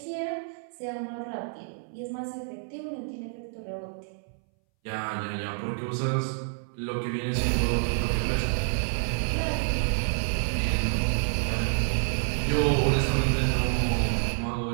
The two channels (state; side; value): silent; left; 59 dB below the other